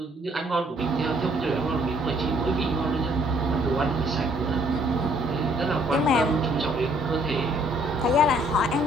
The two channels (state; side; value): normal; both; correlation 0.63